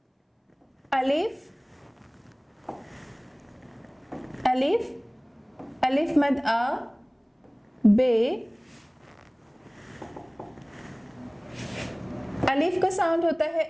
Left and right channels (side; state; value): both; identical; correlation 1.00